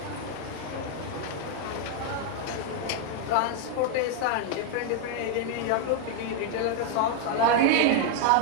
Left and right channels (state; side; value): different; both; correlation 0.00